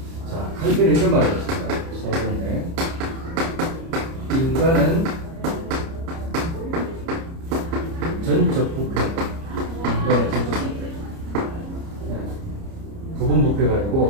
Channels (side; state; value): left; late; 30 ms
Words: 자, 칼빈은 이런 말을 했습니다. 서론에 인간은 전적 부패, 인간의 전적 부패. 부분 부패가